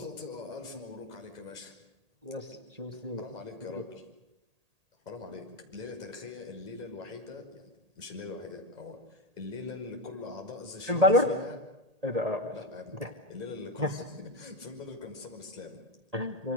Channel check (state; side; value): late; left; 1.8 ms